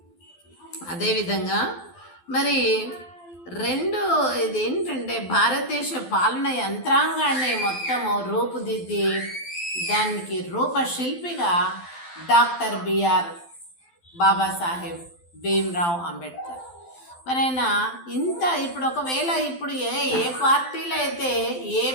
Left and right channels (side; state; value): right; late; 12 ms